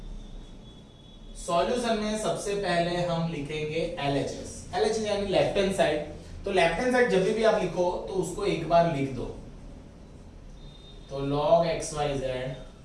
सॉल्यूशन में सबसे पहले हम लिखेंगे LHS, LHS यानी लेफ्ट हैंड साइड। तो लेफ्ट हैंड साइड जब भी आप लिखो तो उसको एक बार लिख दो, तो log xyz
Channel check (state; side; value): identical; both; correlation 1.00